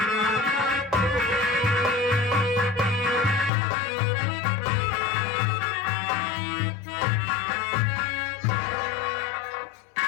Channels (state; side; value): drops out; right; at 3.5 s